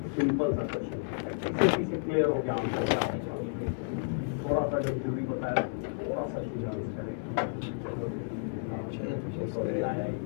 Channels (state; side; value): silent; right; digital silence